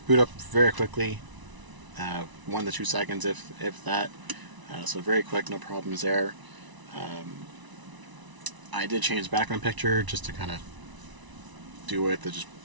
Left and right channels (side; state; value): left; late; 1.0 ms